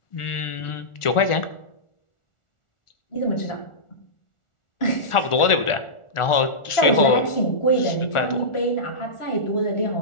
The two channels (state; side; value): late; right; 1.4 ms